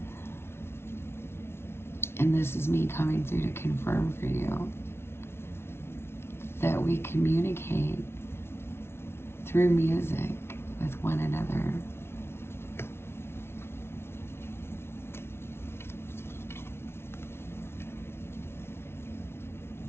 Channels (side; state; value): right; late; 0.12 ms